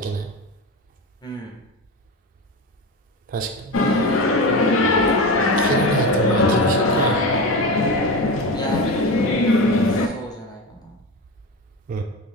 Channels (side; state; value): both; normal; correlation 0.23